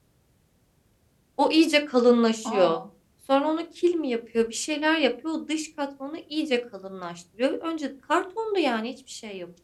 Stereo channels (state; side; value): identical; both; correlation 1.00